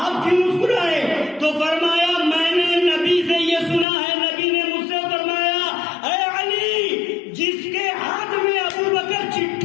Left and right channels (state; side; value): drops out; right; at 3.9 s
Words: کیوں مسکرائے؟ تو فرمایا میں نے نبی سے یہ سنا ہے، نبی نے مجھ سے فرمایا اے علی جس کے ہاتھ میں ابو بکر